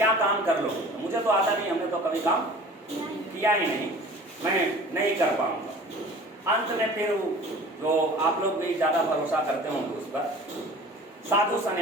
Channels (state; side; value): normal; both; correlation 0.43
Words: काम कर लो, मुझे तो आता नहीं, हमने तो कभी काम किया ही नहीं, मैं नहीं कर पाऊंगा। अंत में फिर जो आप लोग भी ज़्यादा भरोसा करते होंगे उस पर, साधु